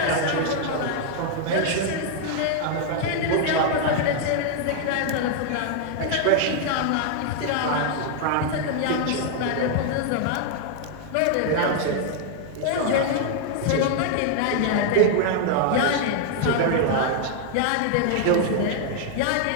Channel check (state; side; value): different; both; correlation 0.00